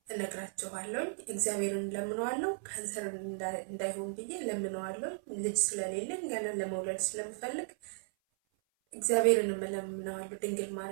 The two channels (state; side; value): silent; left; 54 dB below the other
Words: እነግራችኋለሁ። እግዚአብሔርን ለምነዋለሁ፣ ካንሰር እንዳይሆን ብዬ ለምነዋለሁ። ልጅ ስለሌለኝ ገና ለመውለድ ስለምፈልግ እግዚአብሔርን ለምነዋለሁ። ድንግል